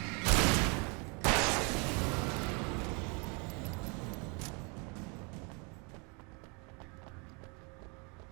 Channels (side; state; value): left; quieter; 32.5 dB